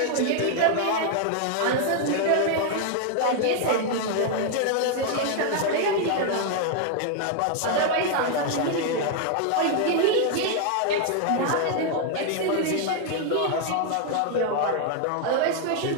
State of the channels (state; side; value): different; both; correlation 0.00